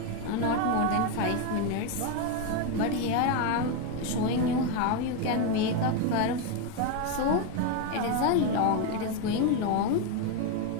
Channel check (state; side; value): different; both; correlation 0.02